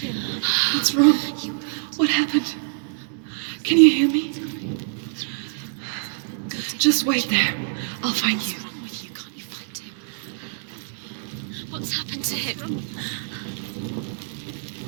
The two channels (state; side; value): silent; left; 62 dB below the other